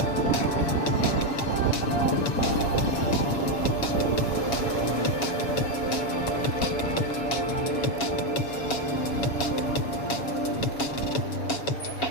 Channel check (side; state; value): right; late; 7.2 ms